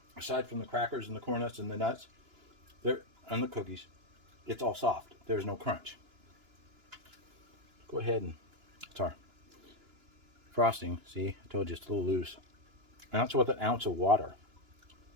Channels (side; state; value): left; late; 2.9 ms